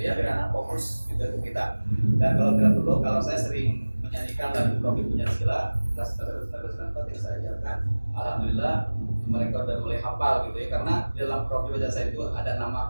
ya, biar anak fokus gitu untuk kita. Dan kalau tidak perlu, kalau saya sering menyanyikan lagu Profil Pancasila, terus yang saya ajarkan, alhamdulillah mereka udah mulai hafal gitu ya, karena dalam Profil Pancasila itu ada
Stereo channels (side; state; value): both; inverted; correlation -1.00